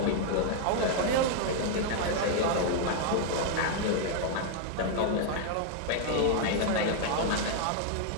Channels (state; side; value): different; both; correlation 0.00